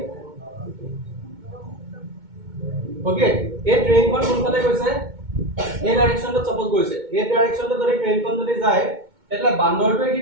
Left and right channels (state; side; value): late; left; 2.2 ms